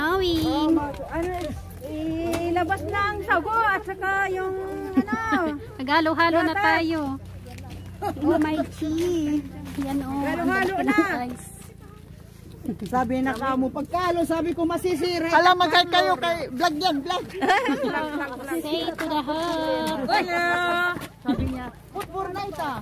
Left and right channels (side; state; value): both; identical; correlation 1.00